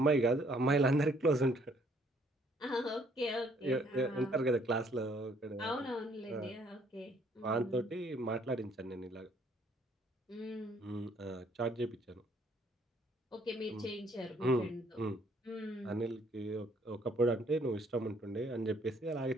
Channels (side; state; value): both; normal; correlation 0.64